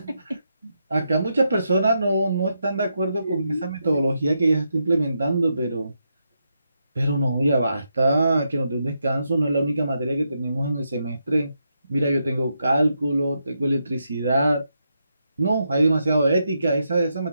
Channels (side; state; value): both; inverted; correlation -0.83